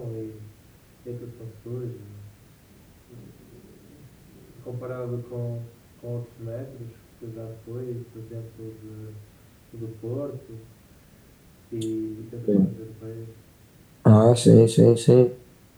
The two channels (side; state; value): both; identical; correlation 1.00